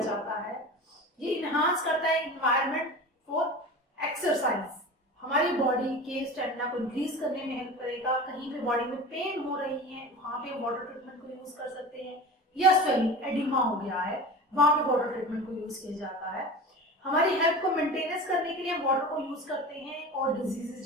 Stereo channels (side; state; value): both; normal; correlation 0.33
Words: जाता है। ये इनहांस करता है एनवायरनमेंट फॉर एक्सरसाइज, हमारी बॉडी के स्टेमिना को इंक्रीज करने में हेल्प करेगा। कहीं पे बॉडी में पेन हो रही है, वहां पे वाटर ट्रीटमेंट को यूज कर सकते हैं। या स्वेलिंग, एडिमा हो गया है, वहां पे वाटर ट्रीटमेंट को यूज किया जाता है। हमारी हेल्थ को मेंटेनेंस करने के लिए हम वाटर को यूज करते हैं, और